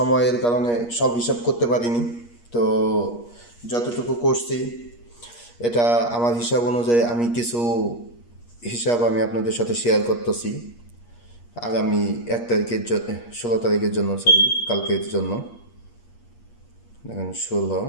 কারণে সব হিসাব করতে পারিনি। তো যতটুকু করছি এটা আমার হিসাব অনুযায়ী আমি কিছু হিসাব আমি আপনাদের সাথে শেয়ার করতেছি আগামী 1 তারিখের জন্য, 16 তারিখের জন্য, সরি কালকের জন্য। দেখেন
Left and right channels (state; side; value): late; right; 8.4 ms